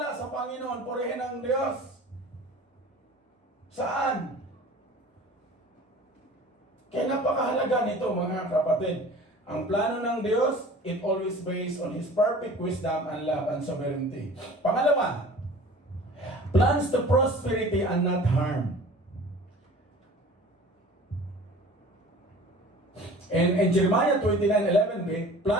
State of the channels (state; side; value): normal; both; correlation 0.44